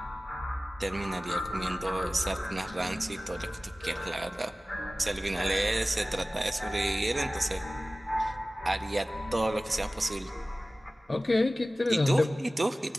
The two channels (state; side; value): normal; both; correlation 0.97